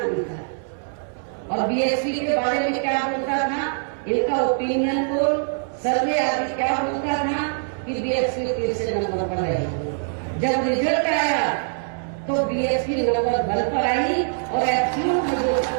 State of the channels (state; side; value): silent; left; 63 dB below the other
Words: था। और बीएसपी के बारे में क्या बोलता था, इनका ओपिनियन पोल, सर्वे आदि क्या बोलता था कि बीएसपी तीसरे नंबर पर रहेगी। जब रिजल्ट आया तो बीएसपी नंबर 1 पर आई और